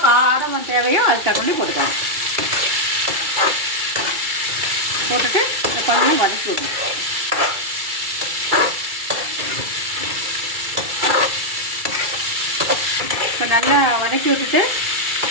காரம் தேவையோ அது தகுந்த போட்டுக்கோங்க. போட்டுட்டு கொஞ்சம் வதக்கி விடணும். இப்போ நல்லா வதக்கி விட்டுட்டு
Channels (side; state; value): left; late; 2.3 ms